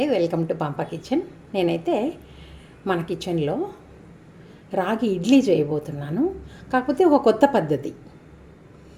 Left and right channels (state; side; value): identical; both; correlation 1.00